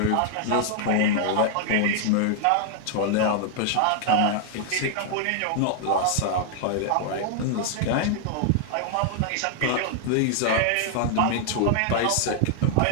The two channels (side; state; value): both; different; correlation 0.00